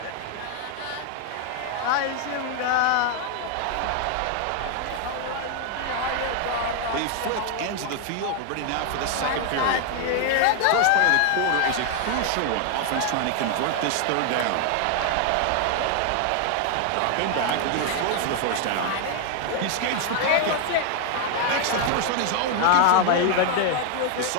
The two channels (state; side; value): different; both; correlation 0.00